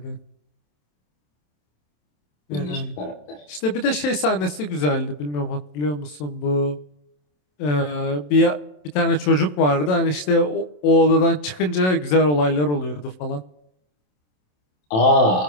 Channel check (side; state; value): right; late; 27 ms